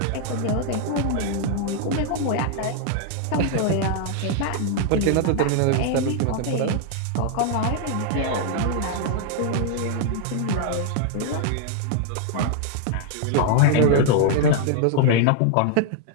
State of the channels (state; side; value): different; both; correlation 0.00